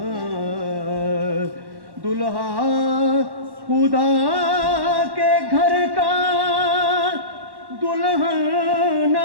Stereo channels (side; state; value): left; late; 1.1 ms